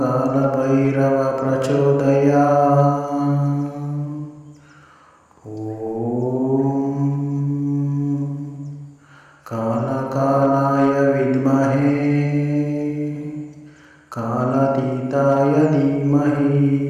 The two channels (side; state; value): both; identical; correlation 1.00